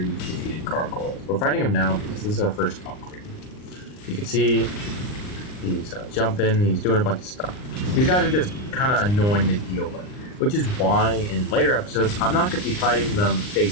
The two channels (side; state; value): right; late; 39 ms